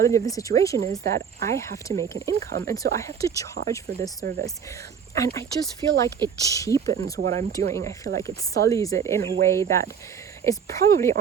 of the situation is that I have to make an income, and so I have to charge for this service. And I just feel like it cheapens what I'm doing. I feel like it sullies it in a way that is probably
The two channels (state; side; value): quieter; left; 7.2 dB